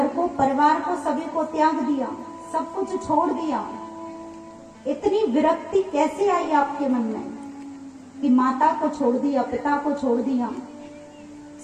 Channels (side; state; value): both; identical; correlation 1.00